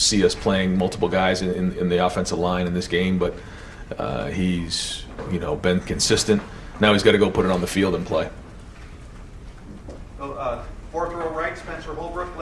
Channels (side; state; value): both; identical; correlation 1.00